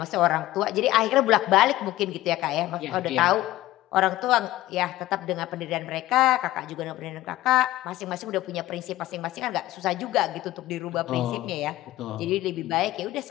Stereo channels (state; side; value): quieter; right; 16.1 dB